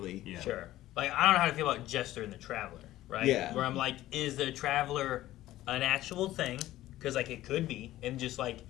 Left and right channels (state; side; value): quieter; right; 15.0 dB